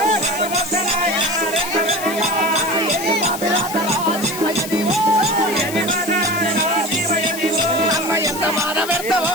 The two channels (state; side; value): noise; left; hiss, 10 dB below the sound